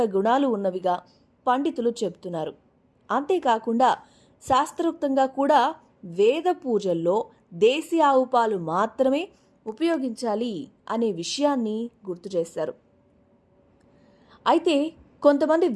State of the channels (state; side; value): identical; both; correlation 1.00